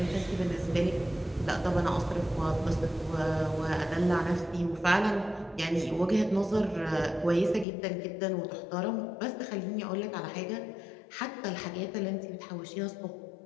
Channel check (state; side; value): drops out; right; at 7.7 s